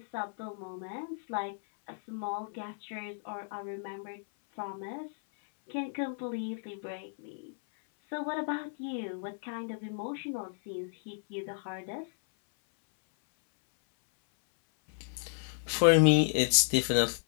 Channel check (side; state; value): right; silent; 56 dB below the other